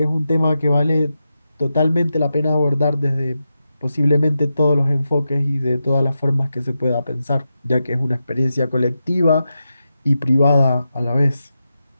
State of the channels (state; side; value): inverted; both; correlation -0.89